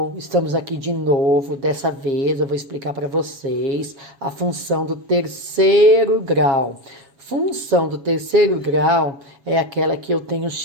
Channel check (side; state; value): left; late; 7.2 ms